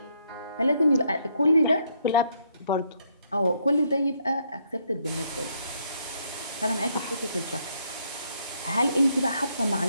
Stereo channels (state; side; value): inverted; both; correlation -0.72